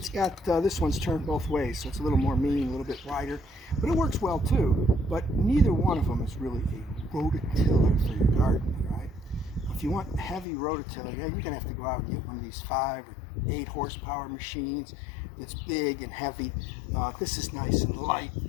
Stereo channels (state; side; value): drops out; right; at 10.5 s